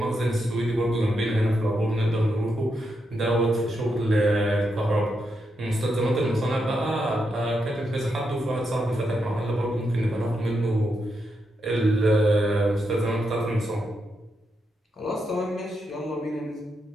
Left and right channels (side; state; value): both; normal; correlation 0.83